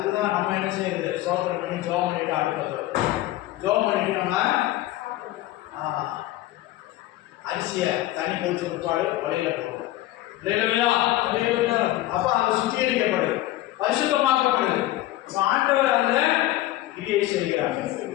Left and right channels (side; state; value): right; quieter; 15.7 dB